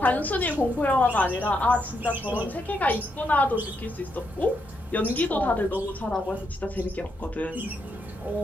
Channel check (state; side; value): normal; both; correlation 0.79